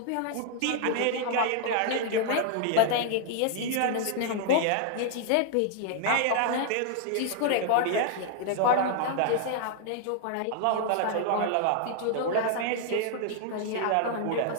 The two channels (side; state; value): both; different; correlation 0.00